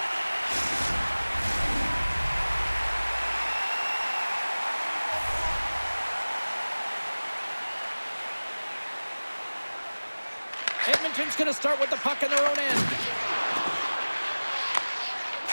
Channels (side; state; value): both; inverted; correlation -1.00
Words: Edmonton's going to start with the puck in their own end.